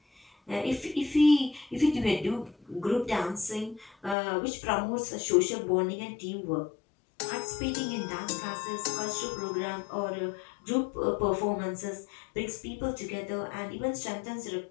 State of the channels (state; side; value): drops out; right; at 4.2 s